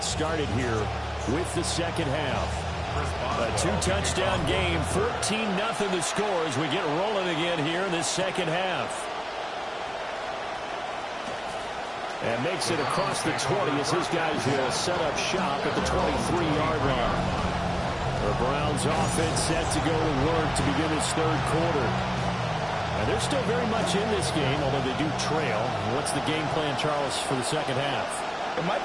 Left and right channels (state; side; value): identical; both; correlation 1.00